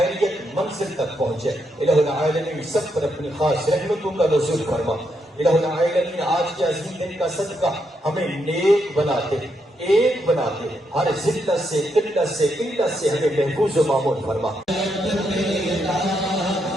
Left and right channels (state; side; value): normal; both; correlation 0.80